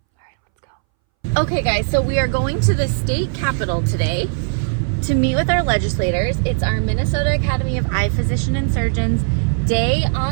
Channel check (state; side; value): silent; left; 64 dB below the other